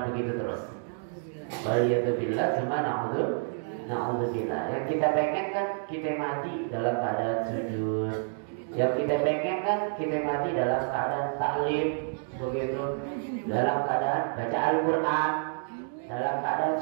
begitu terus. Waliyadzubillah, cuma na'udzubillah. Yang kita pengen kan kita mati dalam keadaan sujud. Yang kita pengen kan kita mati dalam keadaan taklim, begitu, dalam keadaan baca Al-Quran, dalam keadaan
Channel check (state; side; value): silent; left; digital silence